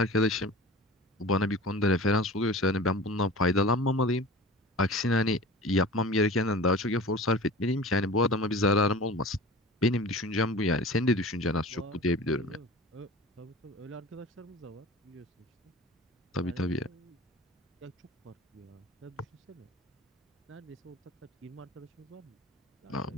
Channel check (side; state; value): both; normal; correlation 0.38